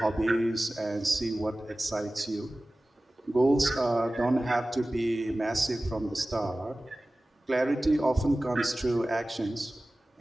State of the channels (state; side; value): normal; both; correlation 0.97